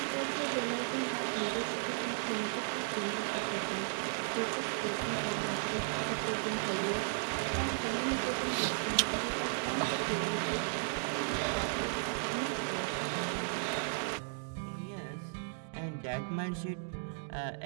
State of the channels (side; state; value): left; silent; digital silence